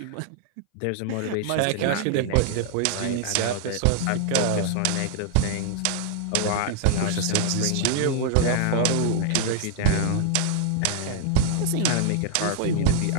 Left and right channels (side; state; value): both; different; correlation 0.00